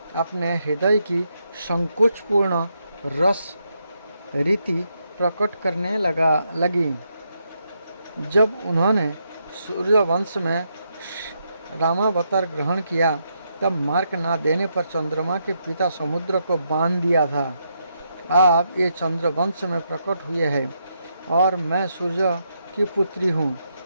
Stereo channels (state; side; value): inverted; both; correlation -0.80